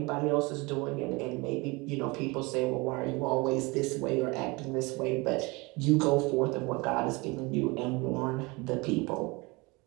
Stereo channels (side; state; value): left; quieter; 25.6 dB